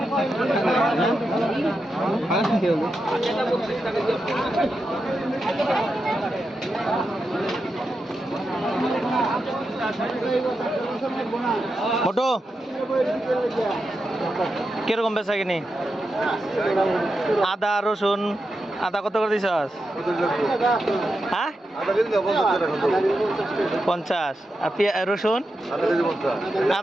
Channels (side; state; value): both; normal; correlation 0.88